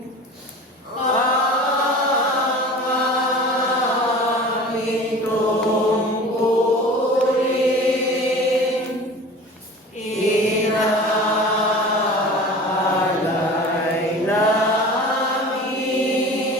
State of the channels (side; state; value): both; normal; correlation 0.39